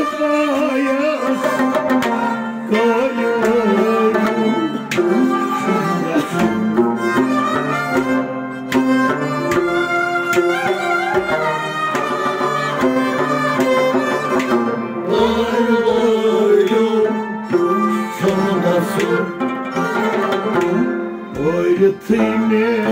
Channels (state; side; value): identical; both; correlation 1.00